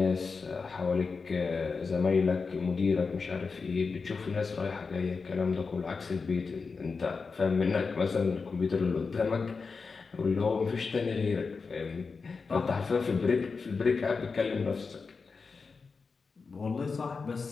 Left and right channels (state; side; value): quieter; right; 4.7 dB